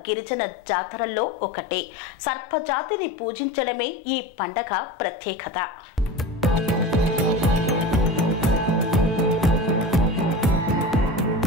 గిరిజన జాతరల్లో ఒకటి. సర్పజాతిని పూజించడమే ఈ పండగ ప్రత్యేకత.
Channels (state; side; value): normal; both; correlation 0.31